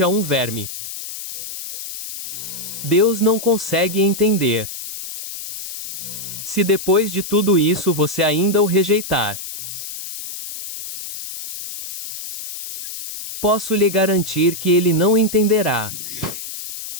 a um verme. Deus não consegue entender. Se depois de tudo isso você ainda o rejeitar, posso lhe garantir que ele não entenderá.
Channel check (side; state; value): left; noise; hiss, 9 dB below the sound